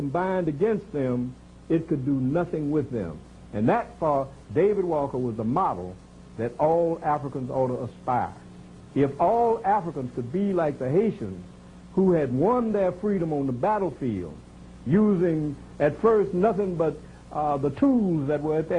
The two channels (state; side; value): identical; both; correlation 1.00